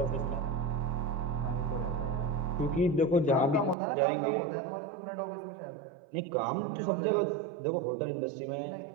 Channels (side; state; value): left; drops out; at 3.8 s